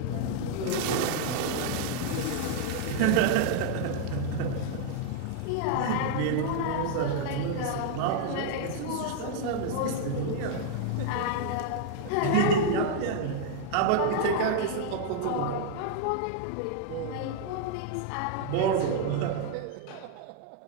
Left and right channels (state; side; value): different; both; correlation 0.00